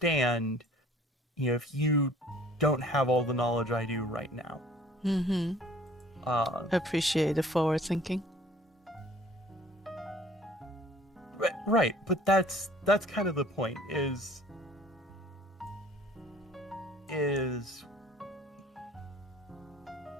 if you don't have all the knowledge I do right now. Appreciate the forward thinking. Right, but that's kind of the point, is is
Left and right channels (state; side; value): normal; both; correlation 0.53